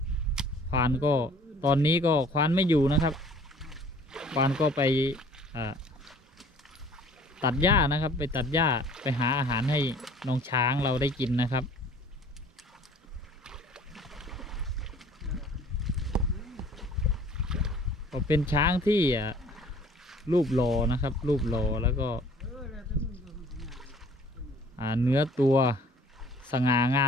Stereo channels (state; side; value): normal; both; correlation 0.53